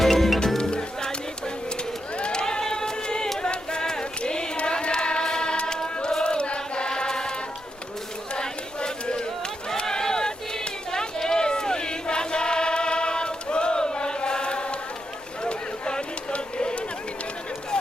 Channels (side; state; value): both; normal; correlation 0.84